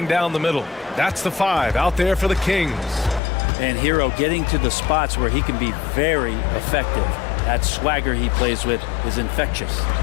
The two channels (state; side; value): drops out; right; at 3.2 s